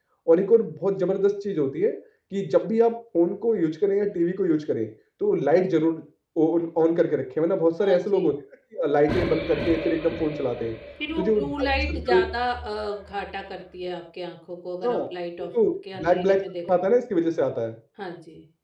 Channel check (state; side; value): identical; both; correlation 1.00